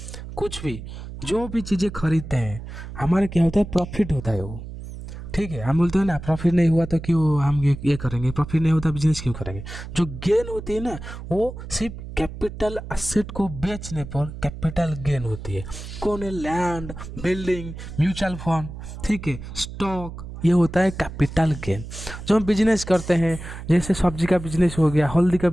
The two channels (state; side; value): noise; right; hum, 11 dB below the sound